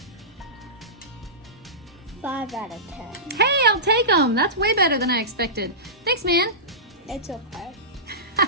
5 out of 10. Hey, I'll take them. That's way better than I expected. Thanks, man. It's okay.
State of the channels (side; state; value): both; normal; correlation -0.19